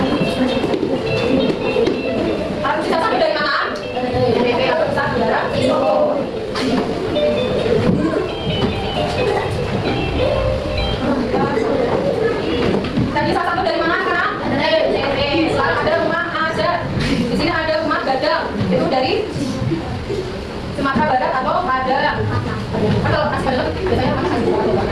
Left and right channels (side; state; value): both; identical; correlation 1.00